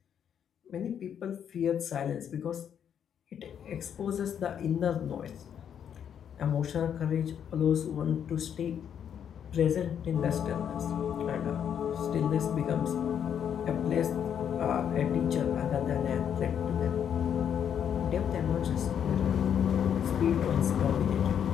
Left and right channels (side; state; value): right; quieter; 8.6 dB